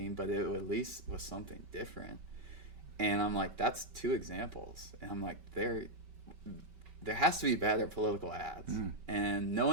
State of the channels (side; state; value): left; late; 5.2 ms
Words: but it at least was something different. And I'm like, that's 2 examples. And I'm like, there has to be better political ads. And no